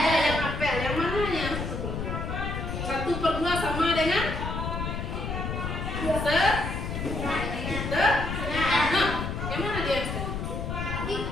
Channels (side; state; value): left; noise; rumble, 4 dB below the sound